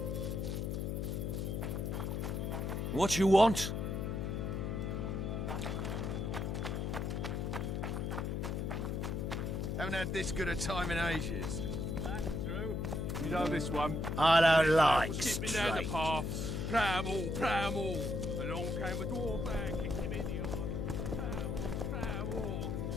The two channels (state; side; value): noise; left; hum, 1 dB below the sound